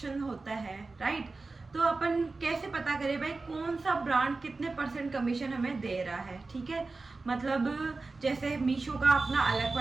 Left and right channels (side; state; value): left; quieter; 3.7 dB